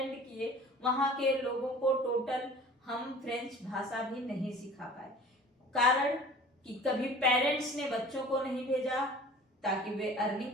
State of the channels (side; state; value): both; normal; correlation 0.45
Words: किए वहां के लोगों को टोटल हम फ्रेंच भाषा भी नहीं सिखा पाए। कारण कि कभी पेरेंट्स ने बच्चों को नहीं भेजा ताकि वे